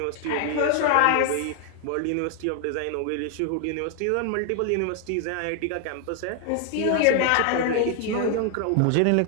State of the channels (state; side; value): different; both; correlation 0.00